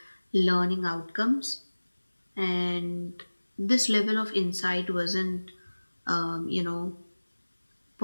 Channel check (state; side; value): inverted; both; correlation -1.00